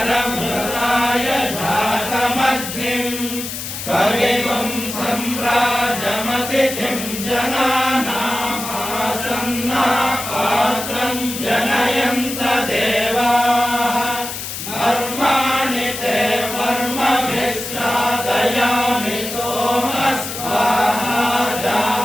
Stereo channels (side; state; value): left; noise; hiss, 7 dB below the sound